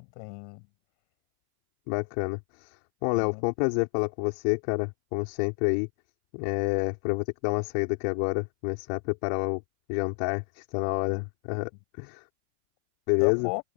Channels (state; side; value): silent; right; 59 dB below the other